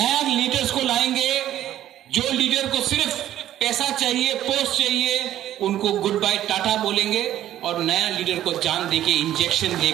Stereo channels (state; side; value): quieter; left; 12.4 dB